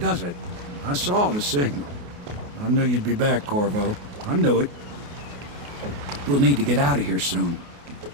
it? I saw the signal. I knew you'd be back, Corvo. I knew it. We'll need to get out of here soon.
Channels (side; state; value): left; late; 28 ms